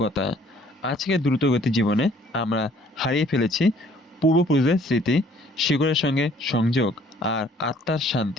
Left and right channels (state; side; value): normal; both; correlation 0.59